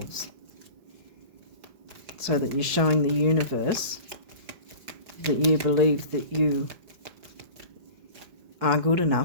so that you're showing the universe that you believe that you are good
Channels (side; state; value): left; late; 4.7 ms